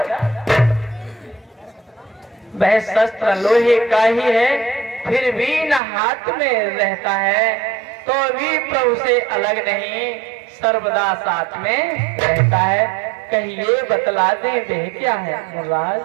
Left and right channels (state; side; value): drops out; left; at 5.8 s